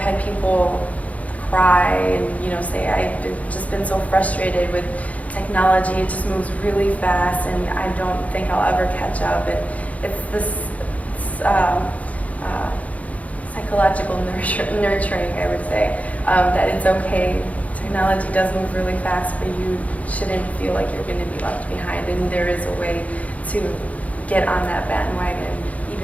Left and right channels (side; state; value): right; late; 0.069 ms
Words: had people cry and say I've just been so frustrated with technology. It just moves really fast, and I don't think I'll ever catch up. And it's this psychological nurturing, I would say, that it's okay. Technology does move really fast, but you shouldn't feel like you're going to be left behind, and there is a way to get on that bandwagon,